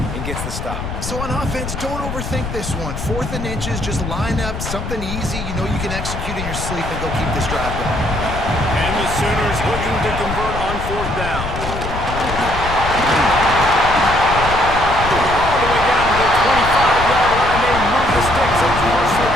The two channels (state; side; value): noise; left; rumble, 6 dB below the sound